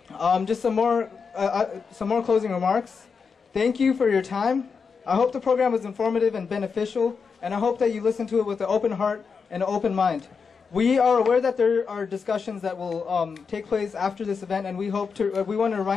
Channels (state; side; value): quieter; right; 5.5 dB